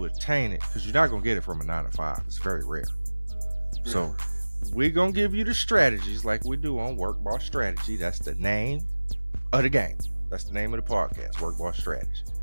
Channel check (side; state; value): both; inverted; correlation -1.00